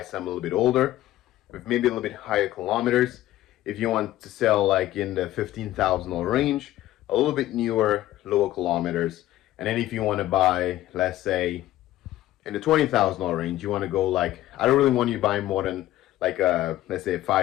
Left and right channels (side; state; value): right; quieter; 14.8 dB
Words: some a little bit older, with maybe a little bit higher kilometers. If you want to sell like in the $15,000 range, a little bit newer, lower kilometers. And then if you want to buy, let's say, in the $20,000 range, you want to go like, I don't really want you buying more than like a, let's say a